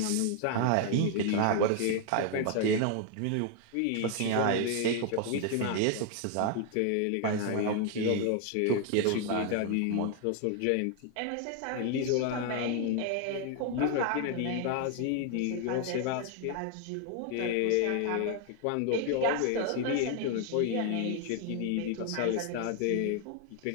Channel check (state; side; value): different; both; correlation 0.00